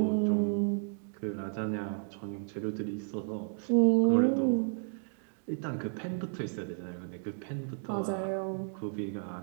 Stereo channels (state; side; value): silent; left; 56 dB below the other